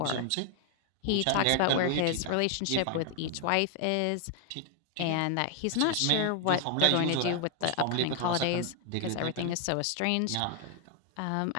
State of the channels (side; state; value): both; different; correlation 0.00